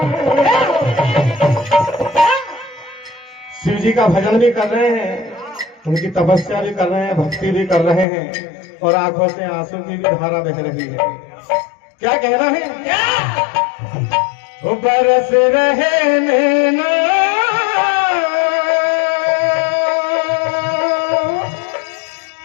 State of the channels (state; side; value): drops out; right; at 8.1 s